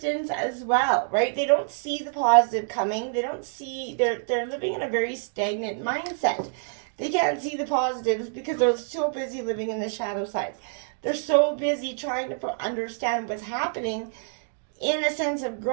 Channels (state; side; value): silent; left; digital silence